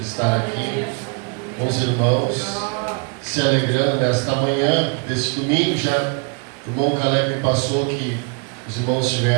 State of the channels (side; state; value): left; quieter; 34.4 dB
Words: aqui com os irmãos, se alegrando nesta manhã deste domingo. Já o irmão Caleb me passou que os irmãos